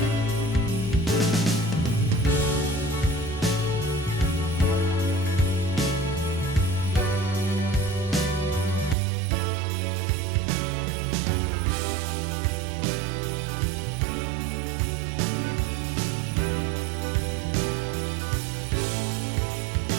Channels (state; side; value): drops out; left; at 9.0 s